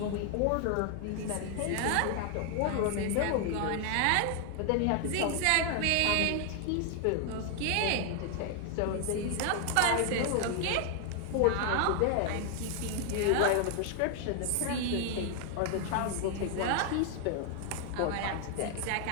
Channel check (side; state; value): both; different; correlation 0.00